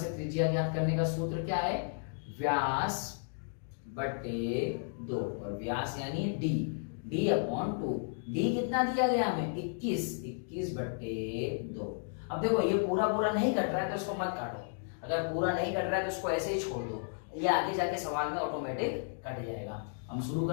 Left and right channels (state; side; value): silent; right; digital silence